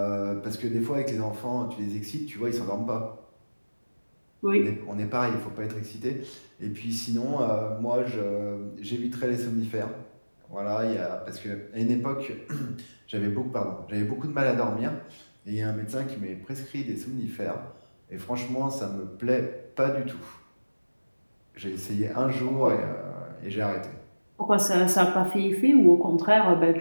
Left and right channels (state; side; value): inverted; both; correlation -1.00